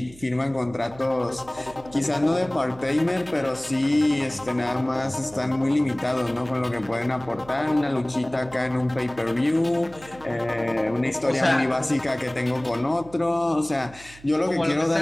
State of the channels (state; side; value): noise; right; hum, 22 dB below the sound